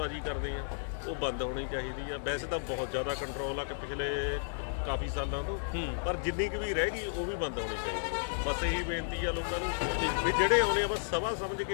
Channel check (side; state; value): right; silent; digital silence